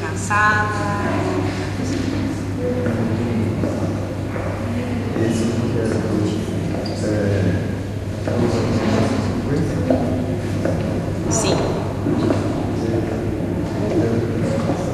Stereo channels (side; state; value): both; identical; correlation 1.00